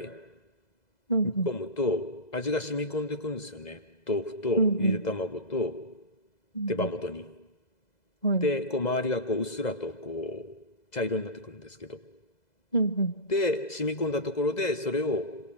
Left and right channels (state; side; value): late; right; 2.0 ms